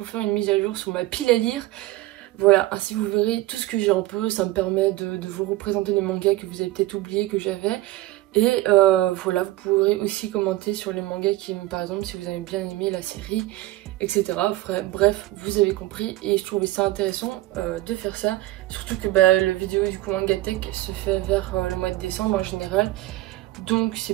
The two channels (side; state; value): left; quieter; 17.0 dB